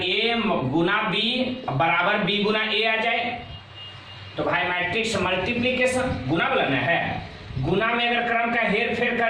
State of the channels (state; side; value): identical; both; correlation 1.00